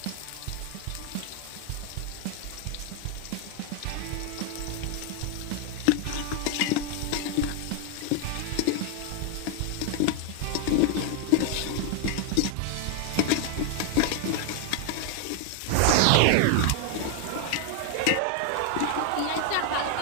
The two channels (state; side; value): different; both; correlation 0.00